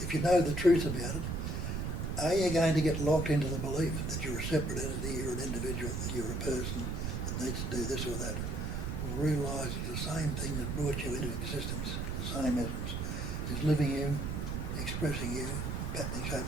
if you know the truth about it, are you going to get locked into the belief that you're a separate entity, you're an individual, that you're a person that needs to do this or that? Or realise that the same thing that brought you into existence, the same essence, is living you, expressing you, patterning,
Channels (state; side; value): noise; right; rumble, 2 dB below the sound